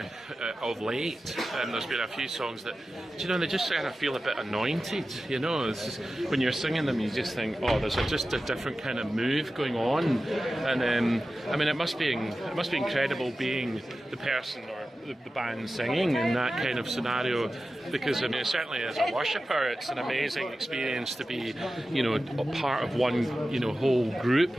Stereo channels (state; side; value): normal; both; correlation 0.94